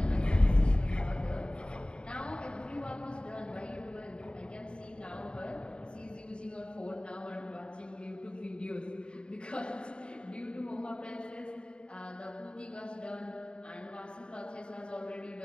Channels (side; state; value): right; late; 0.052 ms